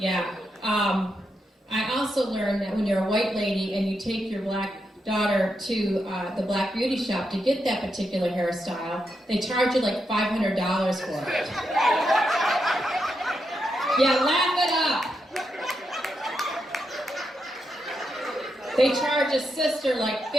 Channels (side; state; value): both; normal; correlation 0.84